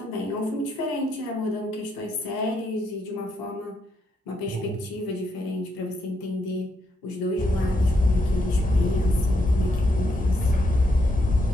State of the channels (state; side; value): normal; both; correlation 0.78